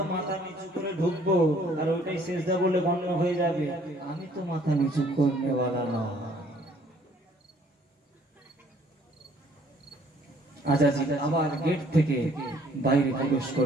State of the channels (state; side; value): normal; both; correlation 0.60